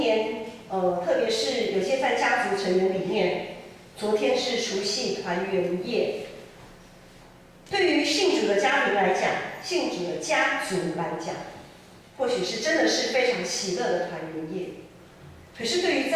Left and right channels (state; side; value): identical; both; correlation 1.00